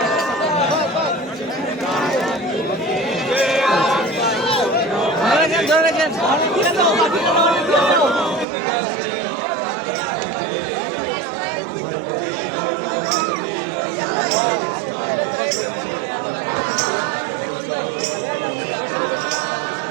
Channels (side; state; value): left; drops out; at 8.5 s